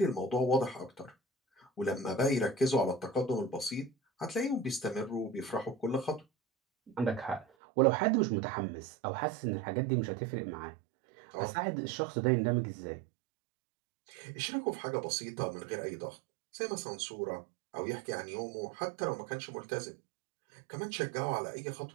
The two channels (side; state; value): left; drops out; at 7.5 s